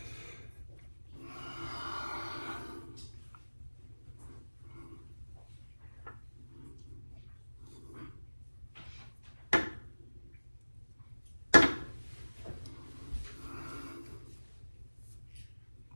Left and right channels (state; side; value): inverted; both; correlation -1.00